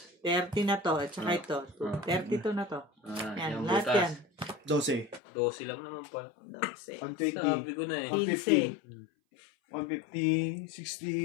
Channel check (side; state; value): right; drops out; at 5.2 s